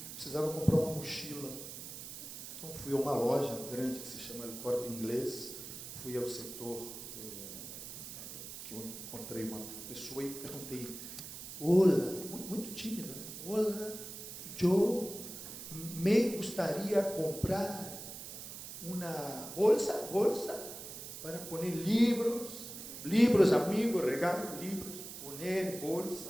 precisava comprar uma mochila. Então, fui a uma loja grande que se chama El Corte Inglês, fui ao setor, que eu encontrei uma pessoa e perguntei, olá, muito tímida, né? Olá, eu me gostaria comprar uma bolsa para pôr livros, amigos, regalo livros, poner bolsa,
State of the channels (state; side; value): noise; right; hiss, 10 dB below the sound